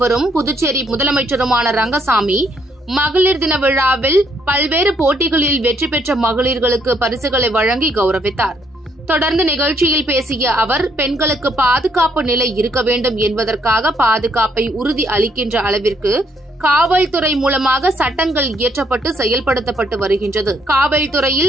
புதுச்சேரி முதலமைச்சருமான ரங்கசாமி மகளிர் தின விழாவில் பல்வேறு போட்டிகளில் வெற்றி பெற்ற மகளிர்களுக்கு பரிசுகளை வழங்கி கௌரவித்தார். தொடர்ந்து நிகழ்ச்சியில் பேசிய அவர், பெண்களுக்கு பாதுகாப்பு நிலை இருக்க வேண்டும் என்பதற்காக பாதுகாப்பை உறுதி அளிக்கின்ற அளவிற்கு காவல்துறை மூலமாக சட்டங்கள் இயற்றப்பட்டு செயல்படுத்தப்பட்டு வருகின்றது.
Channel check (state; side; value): normal; both; correlation 0.71